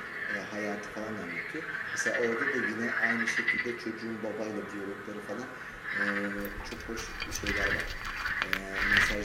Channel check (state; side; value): identical; both; correlation 1.00